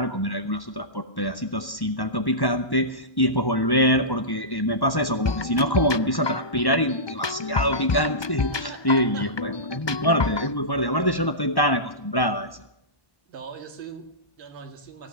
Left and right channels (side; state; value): right; late; 1.2 ms